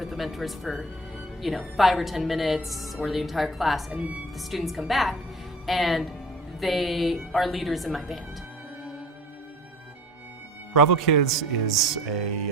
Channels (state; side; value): normal; both; correlation 0.43